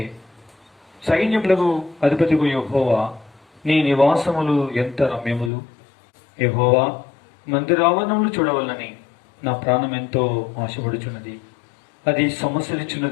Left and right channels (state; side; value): drops out; right; at 5.5 s